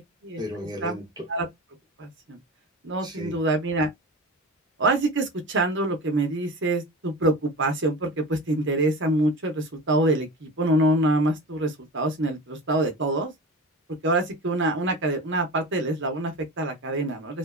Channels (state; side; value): normal; both; correlation 0.32